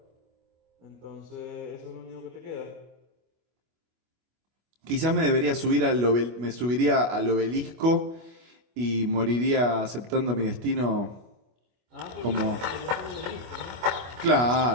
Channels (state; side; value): late; left; 25 ms